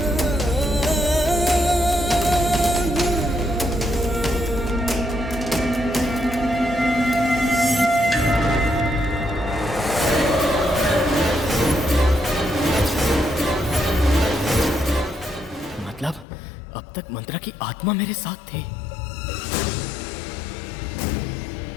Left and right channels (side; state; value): right; drops out; at 16.2 s